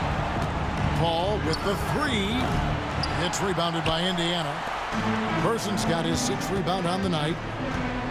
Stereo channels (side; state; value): both; identical; correlation 1.00